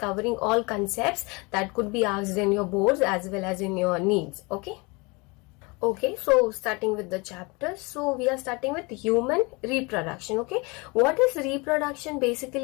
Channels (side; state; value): right; quieter; 27.5 dB